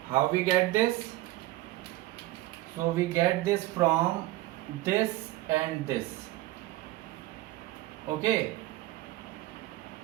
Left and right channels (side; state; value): left; quieter; 17.2 dB